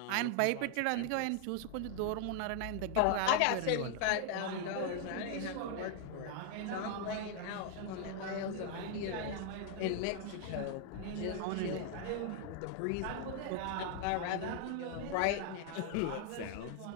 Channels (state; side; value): different; both; correlation 0.00